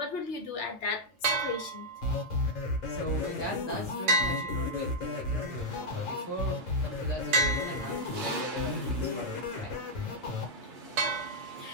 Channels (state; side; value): normal; both; correlation -0.03